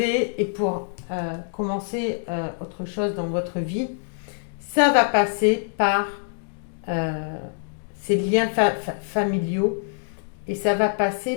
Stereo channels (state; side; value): silent; right; digital silence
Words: et pour commencer autre chose dans votre vie, ça va passer par ces liens familiaux et ça va passer